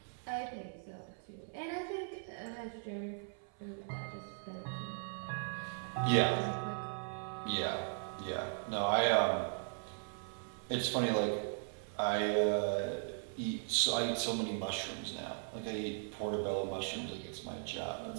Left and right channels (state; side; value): silent; left; 52 dB below the other